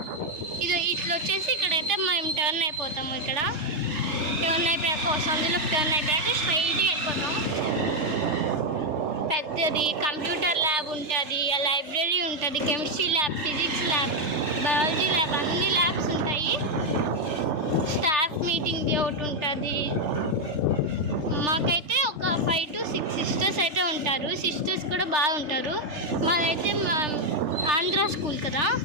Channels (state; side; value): late; left; 3.4 ms